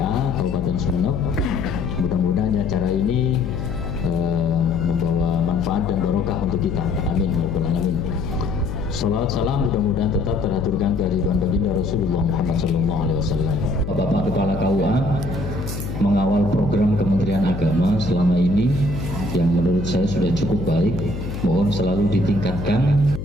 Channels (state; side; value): noise; left; hum, 6 dB below the sound